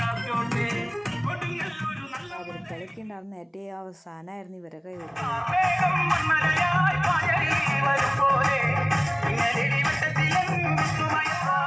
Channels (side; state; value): both; identical; correlation 1.00